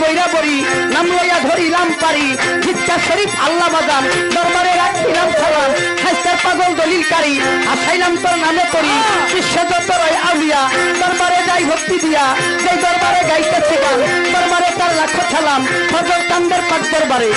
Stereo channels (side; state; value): both; identical; correlation 1.00